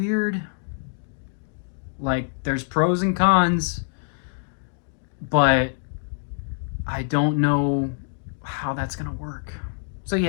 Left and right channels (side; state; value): right; silent; digital silence